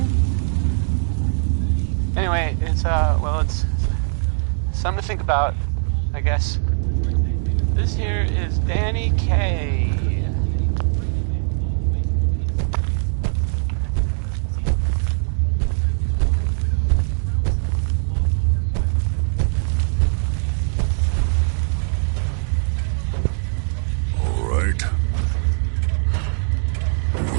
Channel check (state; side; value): silent; left; 65 dB below the other